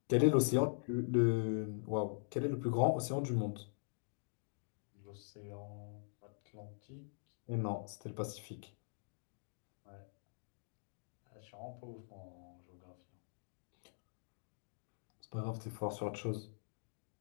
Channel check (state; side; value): silent; right; digital silence